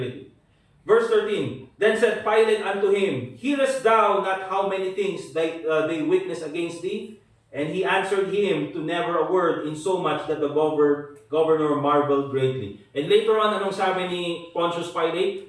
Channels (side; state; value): both; identical; correlation 1.00